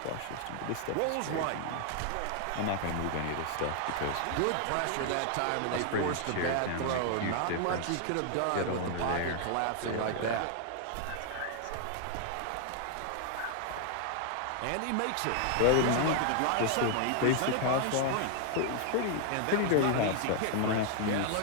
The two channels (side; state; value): both; different; correlation 0.00